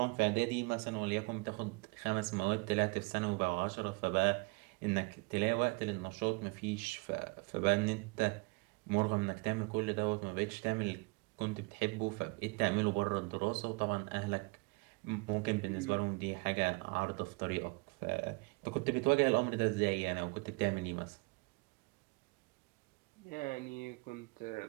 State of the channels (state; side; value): quieter; left; 28.6 dB